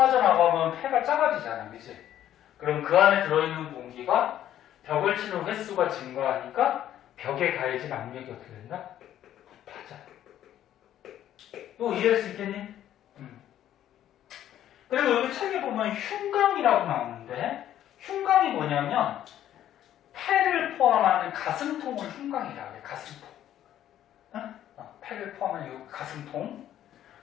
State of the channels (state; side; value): quieter; right; 11.6 dB